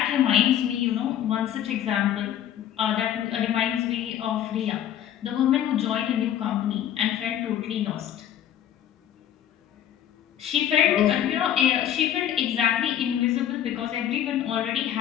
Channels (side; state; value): right; quieter; 10.6 dB